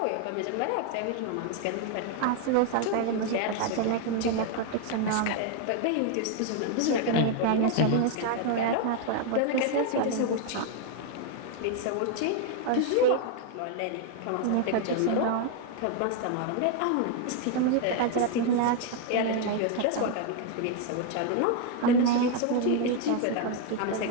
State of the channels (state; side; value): different; both; correlation 0.01